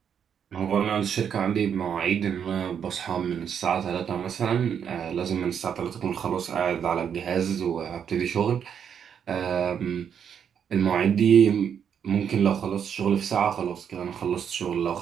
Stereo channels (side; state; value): left; quieter; 8.0 dB